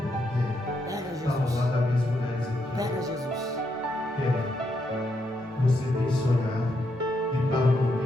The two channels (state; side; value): normal; both; correlation 0.79